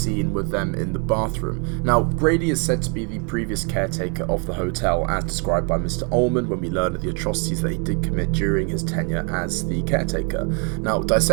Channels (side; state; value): left; quieter; 34.8 dB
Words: with them in the bathroom. Now, Grady is said to be the previous caretaker of the hotel, as described by Mr. Ullman when we learn of the atrocities that he did commit during his tenure as the caretaker. Now,